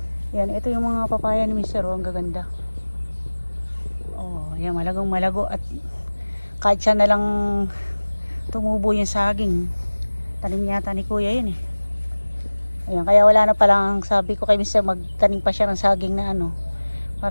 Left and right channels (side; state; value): both; inverted; correlation -1.00